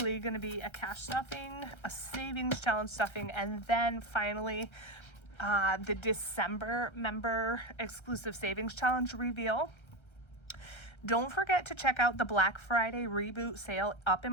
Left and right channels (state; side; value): late; right; 1.3 ms